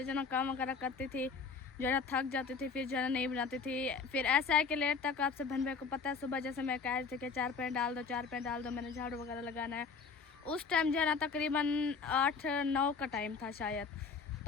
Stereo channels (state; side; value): quieter; right; 5.1 dB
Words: जो है ना काम वगैरह करती थी, जो है ना थक जाती थी, फिर जो है ना नहीं बनाती थी। फिर ऐसा है कि लेट तक आपसे बहन भाई को पता है, सुबह जैसे मैं कह रही थी कि 4 पैर डाल दो 4 पैर डाल दो, मैंने झाड़ू वगैरह लगाना है। उस टाइम जो है ना तकरीबन 8-9 का टाइम था शायद,